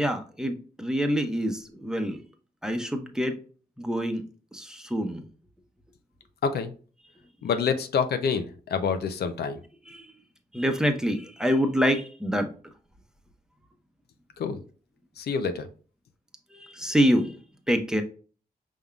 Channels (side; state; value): both; normal; correlation 0.70